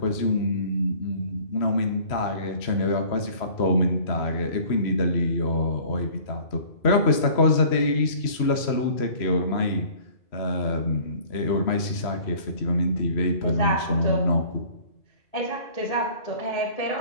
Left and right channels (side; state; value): right; late; 3.0 ms